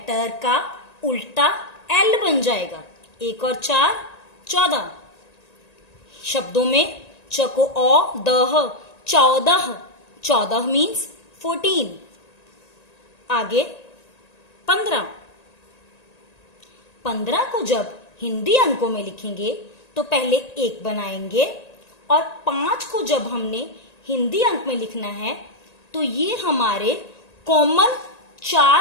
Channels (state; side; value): late; right; 1.9 ms